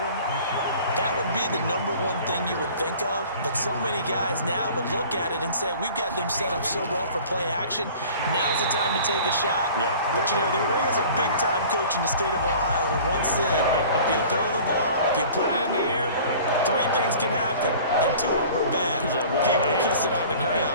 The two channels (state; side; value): inverted; both; correlation -0.45